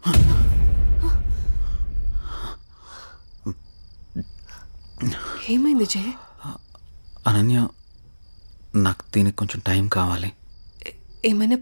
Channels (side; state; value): both; inverted; correlation -1.00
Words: ఏమైంది జై? అనన్య, నాకు దీనికి కొంచెం టైం కావాలి. ఏమైనా